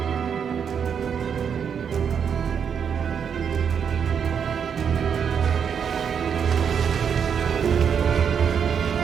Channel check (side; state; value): left; quieter; 7.3 dB